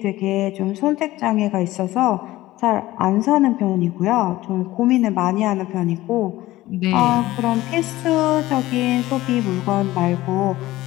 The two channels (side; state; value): right; quieter; 16.9 dB